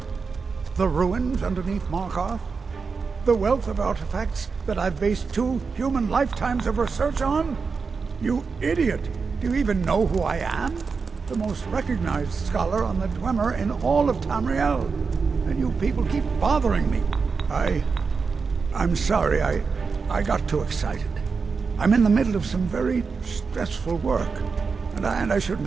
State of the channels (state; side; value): quieter; left; 5.0 dB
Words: The ruins underneath Markarth? The wealth of artifacts that I've based 2 human lifetimes of research on? You idiot! Do you even know who I am? The most recognized scholar on the Dwemer in all of Tamerial. And you people keep bothering me. I'm sorry, I got too excited. I'm in the middle of some very stressful work, and I shouldn't